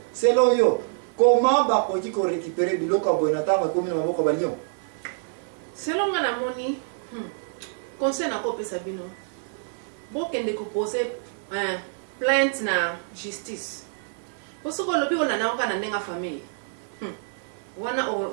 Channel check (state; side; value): silent; left; 59 dB below the other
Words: C'est lo yo. Comment va qu'on récupérer du local bonatama comme nous avons comme Lyon? Selon ma moni, conseil na copie Sabino. Bon qu'elle décompose plainte na justice. Parce que le but on a na nenga famille. Wana